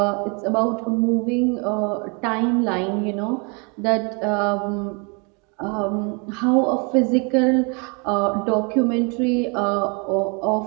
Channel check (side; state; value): left; quieter; 33.3 dB